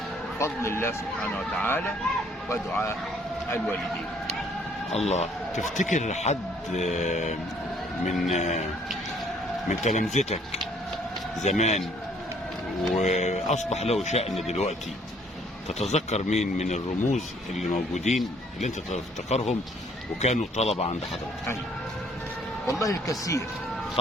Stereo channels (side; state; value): both; normal; correlation 0.61